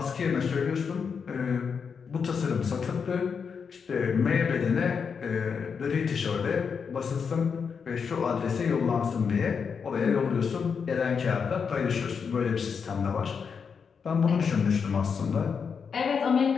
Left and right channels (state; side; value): quieter; right; 6.1 dB